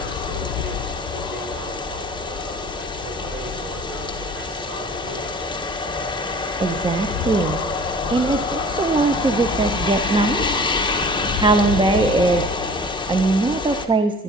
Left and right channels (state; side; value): normal; both; correlation 0.46